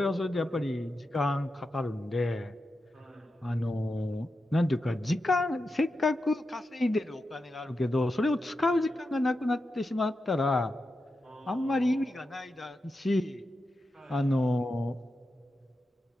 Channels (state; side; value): normal; both; correlation 0.89